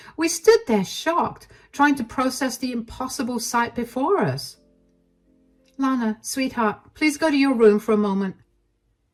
We stood there shocked, trying to process the impossible sight before us. Lana, sweetheart, please go to your room for a moment.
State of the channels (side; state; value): both; identical; correlation 1.00